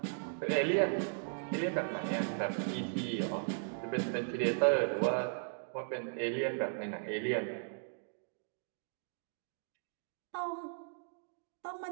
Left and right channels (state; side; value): silent; left; digital silence